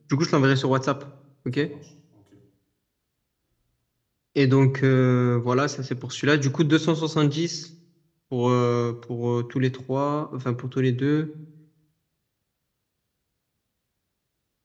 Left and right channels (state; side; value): identical; both; correlation 1.00